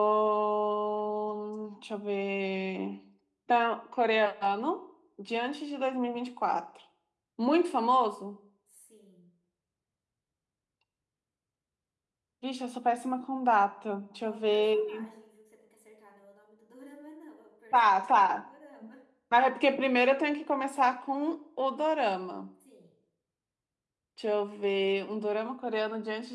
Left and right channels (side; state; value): both; identical; correlation 1.00